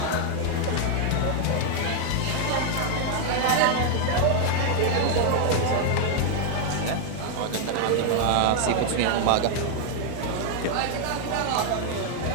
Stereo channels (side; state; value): both; different; correlation 0.00